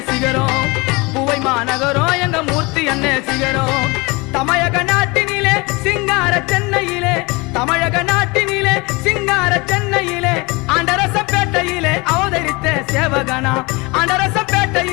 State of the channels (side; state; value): right; quieter; 25.6 dB